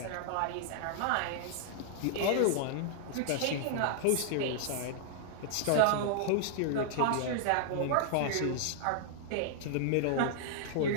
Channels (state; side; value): different; both; correlation -0.01